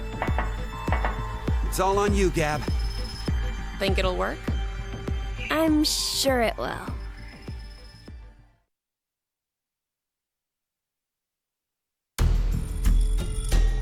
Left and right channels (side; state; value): both; identical; correlation 1.00